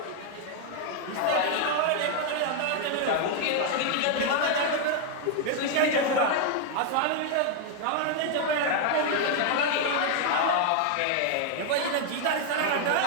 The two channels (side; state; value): both; different; correlation 0.00